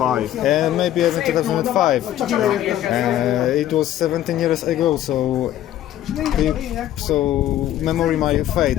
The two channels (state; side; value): quieter; right; 12.5 dB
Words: And maybe even 2005. It was 17 years ago, so memory might fade